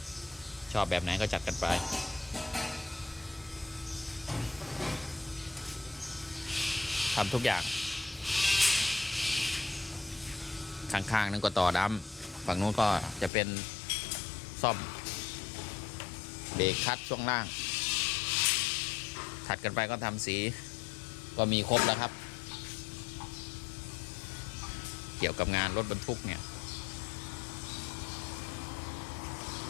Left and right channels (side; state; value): right; drops out; at 13.3 s